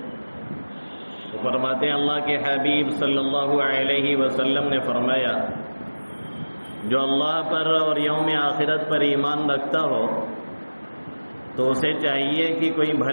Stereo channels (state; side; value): inverted; both; correlation -1.00